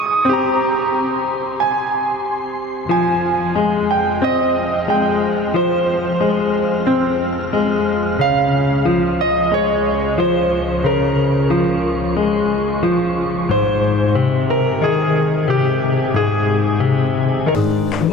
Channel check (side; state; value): both; normal; correlation 0.50